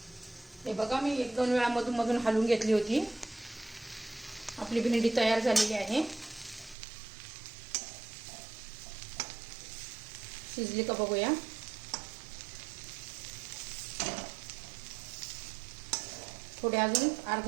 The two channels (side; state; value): left; drops out; at 6.8 s